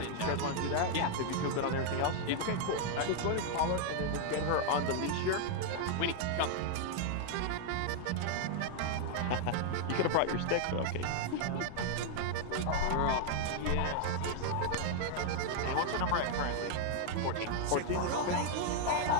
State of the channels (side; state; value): both; different; correlation 0.00